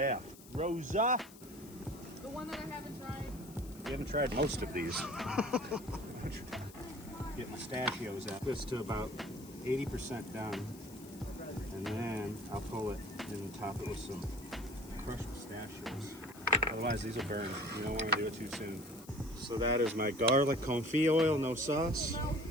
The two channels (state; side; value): noise; left; hiss, 20 dB below the sound